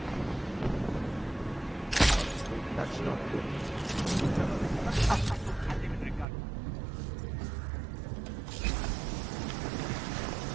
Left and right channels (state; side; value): drops out; left; at 6.2 s